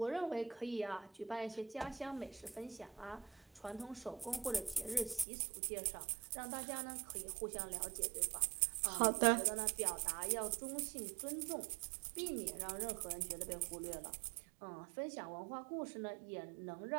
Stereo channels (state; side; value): drops out; left; at 5.2 s